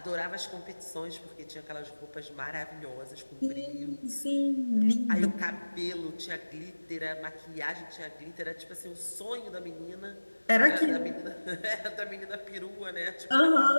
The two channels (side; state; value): both; inverted; correlation -1.00